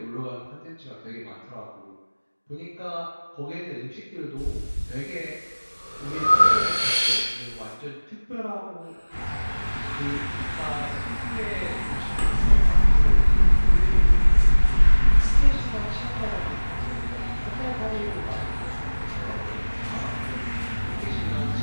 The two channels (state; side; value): inverted; both; correlation -1.00